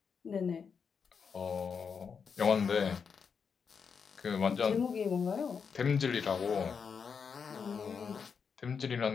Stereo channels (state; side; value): quieter; right; 6.1 dB